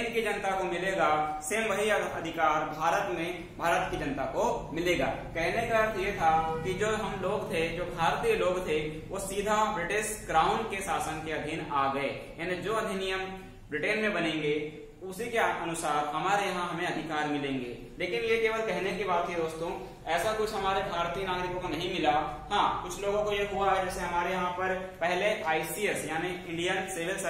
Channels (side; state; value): both; identical; correlation 1.00